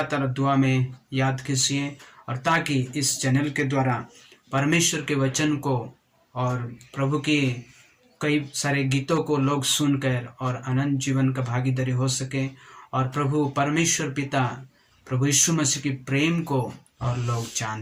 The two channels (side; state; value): both; identical; correlation 1.00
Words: दुआ में याद कीजिए, और ताकि इस चैनल के द्वारा परमेश्वर के वचन को और प्रभु के कई सारे गीतों को लोग सुनकर और अनंत जीवन का भागीदारी हो सके, और प्रभु परमेश्वर पिता प्रभु यीशु मसीह की प्रेम को और लोग जान